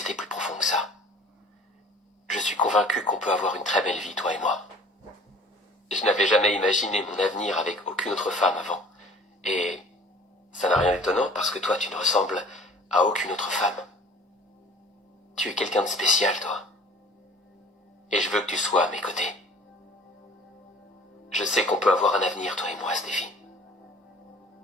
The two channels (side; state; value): both; normal; correlation 0.49